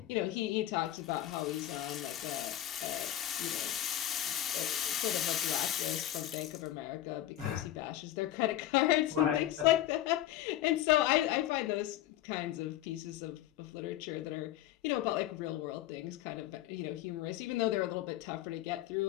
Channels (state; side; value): quieter; right; 13.3 dB